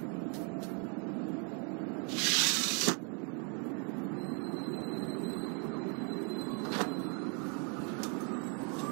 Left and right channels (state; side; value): quieter; left; 36.6 dB